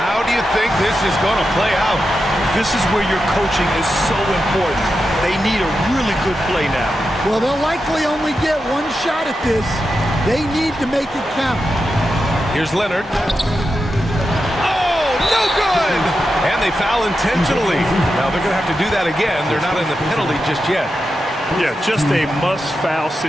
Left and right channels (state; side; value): normal; both; correlation 0.89